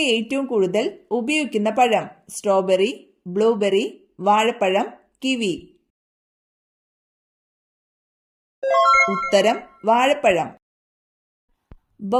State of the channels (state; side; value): identical; both; correlation 1.00